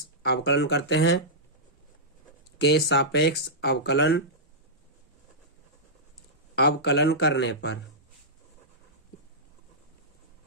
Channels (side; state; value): both; normal; correlation -0.13